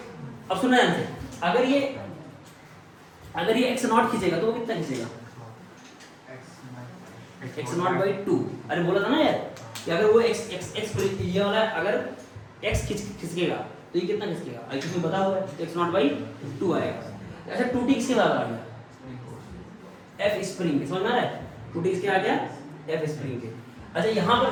अब सुनना ध्यान से, अगर ये x नॉट खींचेगा तो वो कितना खींचेगा x नॉट बाई 2। अरे बोला था ना यार कि अगर वो x ये वाला अगर x खिसकेगा तो ये कितना खिसकेगा, अगर तुम्हें बता हुआ है x नॉट बाई 2 आएगा। अच्छा 2t किसके बराबर आ गया f स्प्रिंग के, समझ में आ रहा है 2t किसके आ गया f स्प्रिंग के। अच्छा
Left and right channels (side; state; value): both; identical; correlation 1.00